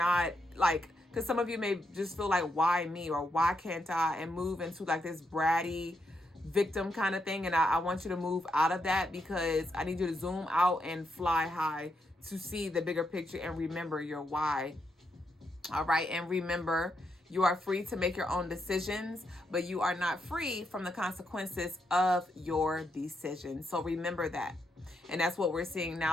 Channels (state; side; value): normal; both; correlation 0.80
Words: like, because some of you may just feel like, why me, or why can't I, and move into like this bratty victim kind of thing. And I want you to move out of that, because I need you to zoom out and fly high to see the bigger picture and remember your why. All right. And remember, you are free to make your own decisions, but you are not free from the consequences of your decisions. So remember that. And that's what we're seeing